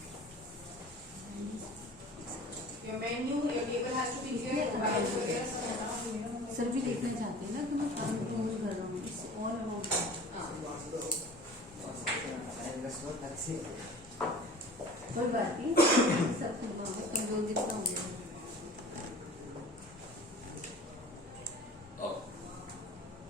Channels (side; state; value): both; normal; correlation 0.42